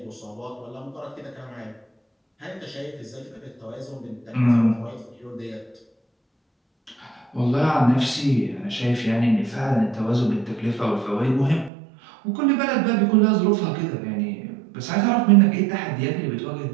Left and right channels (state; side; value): drops out; left; at 11.7 s